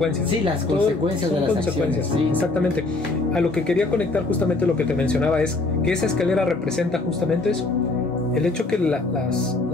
Sí, las consecuencias de las acciones. Sí, exactamente. A lo que quería conectar justamente lo que te mencionaba es que esa escalera representa justamente eso. El hecho que las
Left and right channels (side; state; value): right; quieter; 3.2 dB